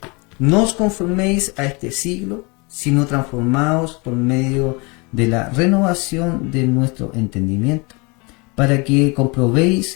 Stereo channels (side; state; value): right; quieter; 28.9 dB